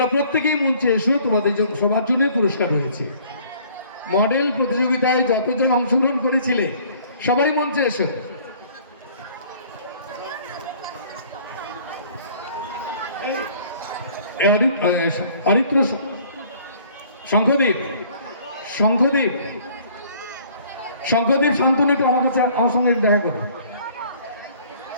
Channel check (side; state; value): both; inverted; correlation -0.55